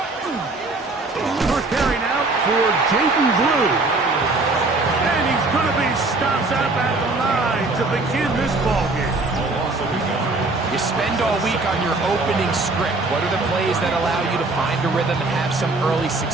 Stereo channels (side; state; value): left; quieter; 3.3 dB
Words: First carry now for Jaden Blue. And he's going to be stopped up at the line to begin this ballgame. You spend all week on your opening script. What are the plays that allow you to find a rhythm and have some early